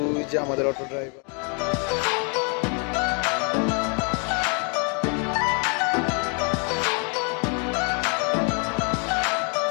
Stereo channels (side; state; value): right; quieter; 37.6 dB